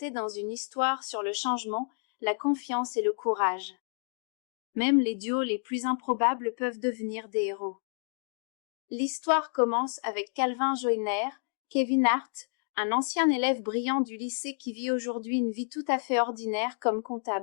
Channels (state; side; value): silent; right; digital silence